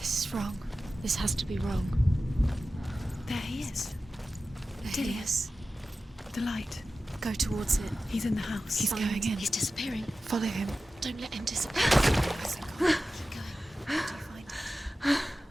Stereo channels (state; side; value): normal; both; correlation 0.94